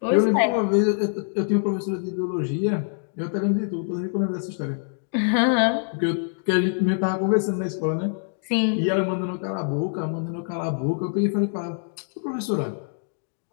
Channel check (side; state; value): right; silent; digital silence